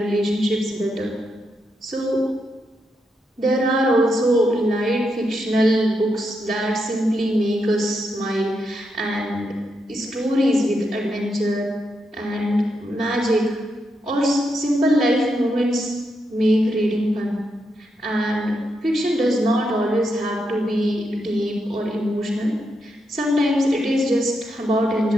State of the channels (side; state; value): both; normal; correlation 0.82